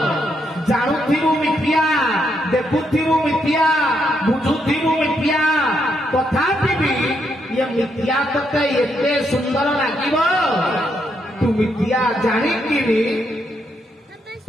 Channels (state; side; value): normal; both; correlation 0.78